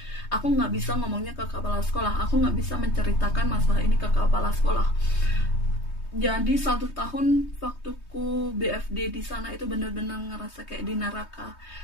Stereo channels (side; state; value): right; late; 3.2 ms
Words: aku nggak bisa ngomongnya ke kepala sekolah, aku nggak bisa menceritakan masalah ini ke kepala sekolah. Jadi 1 tahun waktuku BFD di sana itu benar-benar ngerasa kayak di neraka.